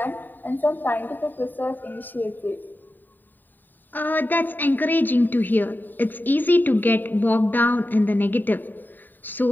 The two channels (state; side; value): late; right; 0.090 ms